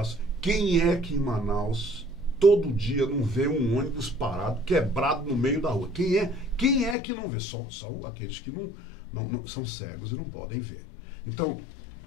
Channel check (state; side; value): drops out; right; at 7.0 s